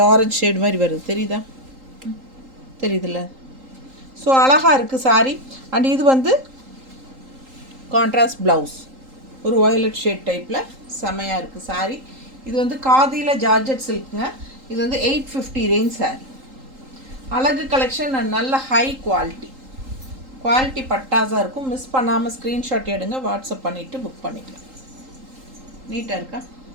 ஆரஞ்சு ஷேடு மாதிரி வருது, தெரியுதா? தெரியுதுல்ல? ஸோ அழகாக இருக்குது சாரீ. அண்ட் இது வந்து கான்ட்ராஸ்ட் ப்ளவுஸ், ஒரு வயலட் ஷேட் டைப்பில் செமையாக இருக்குது சாரீ. இது வந்து காதியில் ஜார்ஜெட் சில்க்குங்க. இது வந்து 850 ரேஞ்ச் சாரீ. அழகு கலெக்ஷன் அண்ட் நல்ல ஹை குவாலிட்டி. குவாலிட்டி பட்டாசாக இருக்கும். மிஸ் பண்ணாமல் ஸ்க்ரீன்ஷாட் எடுங்க, வாட்ஸ்அப் பண்ணிவிட்டு புக் பண்ணிக்கலாம். நீட்டாக இருக்கா?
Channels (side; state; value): left; late; 3.8 ms